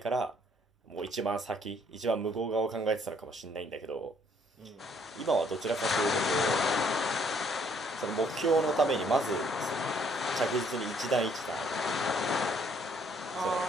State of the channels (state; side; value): normal; both; correlation 0.65